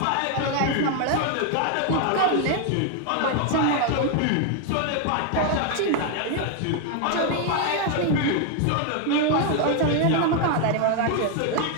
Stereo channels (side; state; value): both; different; correlation 0.01